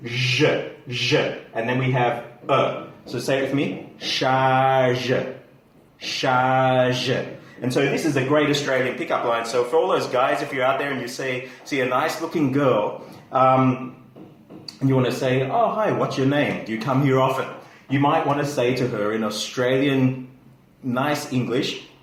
zh, zh, and then we have So say it with me, charge, charge. And so this is a great Australian pickup line. So for all those guys, if you're out there and you see a nice-looking girl, and you want to say, "Oh, hi, what's your name? Do you come here often?" You might want to say to her in Australian nice English,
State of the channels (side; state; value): both; identical; correlation 1.00